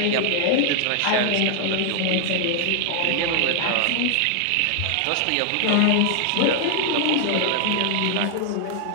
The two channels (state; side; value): different; both; correlation 0.00